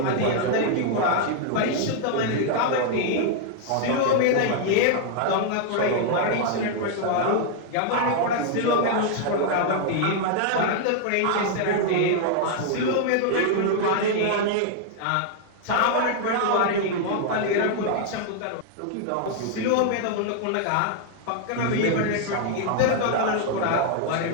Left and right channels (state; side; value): different; both; correlation 0.00